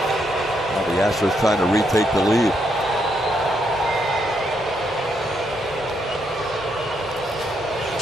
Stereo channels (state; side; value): normal; both; correlation 0.77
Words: Now the Astros trying to retake the lead.